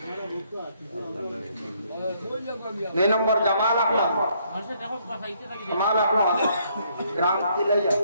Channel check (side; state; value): both; inverted; correlation -0.69